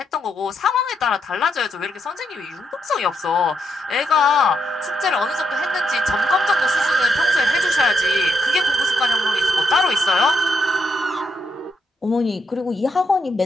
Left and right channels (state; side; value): normal; both; correlation 0.79